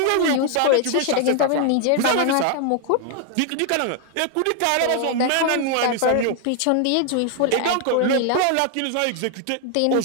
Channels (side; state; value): both; different; correlation 0.00